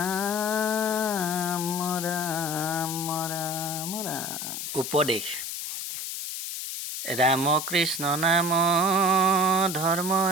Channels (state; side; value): noise; left; hiss, 5 dB below the sound